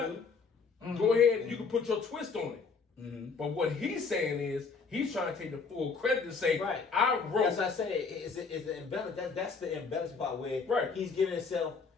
Go ahead and you can put your twist on it. Mm-hmm. But what he's saying is he's trying to take the full credit to say, I wrote. As I said, is the embellish. That's the embellished part where he's giving himself.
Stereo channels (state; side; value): quieter; right; 5.0 dB